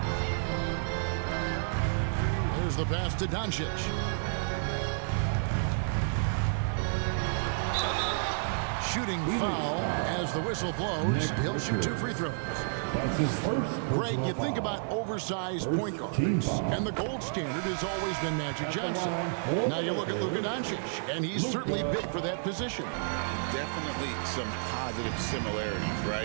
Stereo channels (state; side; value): silent; left; digital silence